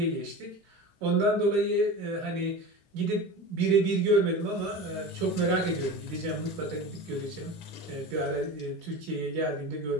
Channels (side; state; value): both; normal; correlation 0.31